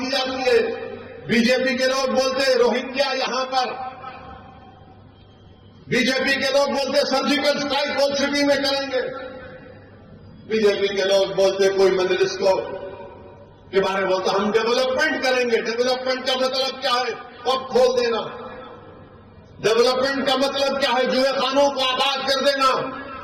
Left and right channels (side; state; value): both; identical; correlation 1.00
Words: جاتی ہے. بی جے پی کے لوگ بولتے روہنگیا یہاں پر, بی جے پی کے لوگ بولتے سرجیکل اسٹرائک اولڈ سٹی میں کریں گے. بی جے پی کے لوگ بولتے کوئی مجلس کو کے بارے میں بولتا ہم ڈیولپمنٹ کریں گے. ڈیولپمنٹ کا مطلب کیا ہے؟ پب کھول دینا. ڈیولپمنٹ کا مطلب کیا ہے؟ جوئے خانوں کو آباد کر دینا.